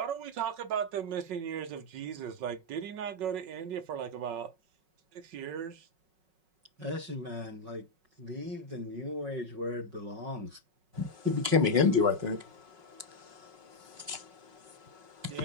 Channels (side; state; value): left; late; 5.4 ms